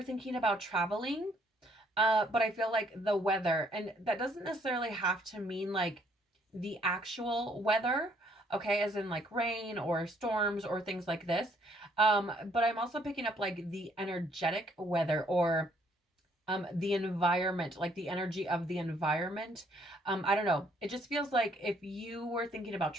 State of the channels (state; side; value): normal; both; correlation 0.66